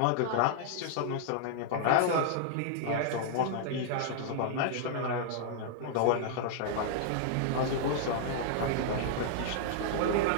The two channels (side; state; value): both; different; correlation -0.01